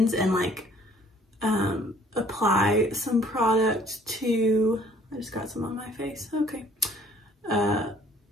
and like apply some product to, I just got some on my face, okay.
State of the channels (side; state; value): both; normal; correlation 0.58